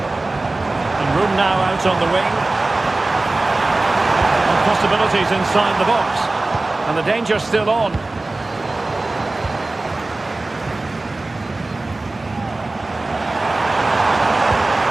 And room now out on the wing. And possibilities inside the box. And the danger's still on.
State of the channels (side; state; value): left; quieter; 3.0 dB